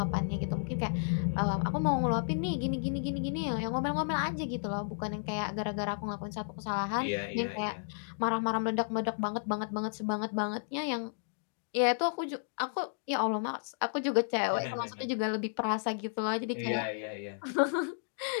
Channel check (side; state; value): right; silent; digital silence